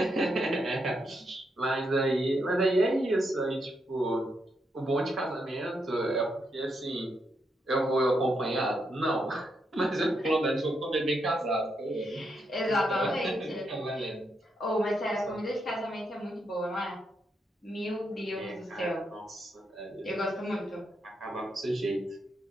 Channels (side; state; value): both; normal; correlation 0.81